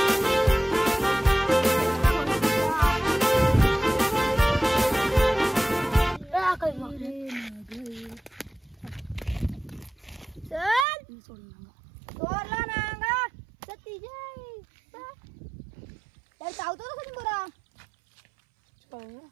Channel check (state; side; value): drops out; left; at 10.9 s